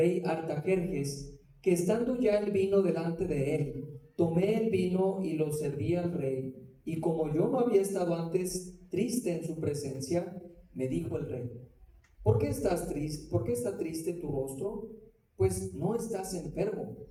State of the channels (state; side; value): identical; both; correlation 1.00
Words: Artajerjes, que estando ya el vino delante de él, tomé el vino y lo serví al rey. Y como yo no había estado antes triste en su presencia, me dijo el rey: ¿por qué estás triste? ¿Por qué está triste tu rostro? Pues no estás enfermo,